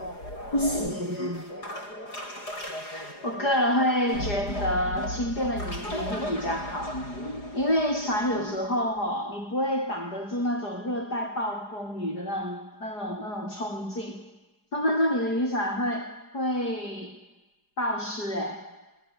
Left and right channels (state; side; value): late; right; 4.9 ms